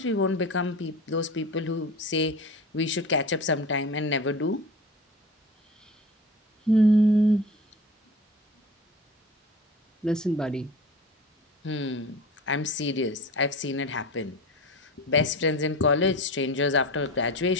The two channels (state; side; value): normal; both; correlation 0.34